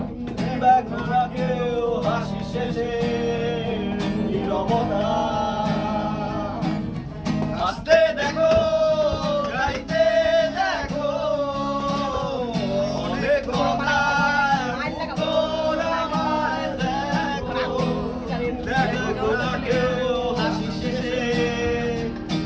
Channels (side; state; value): both; identical; correlation 1.00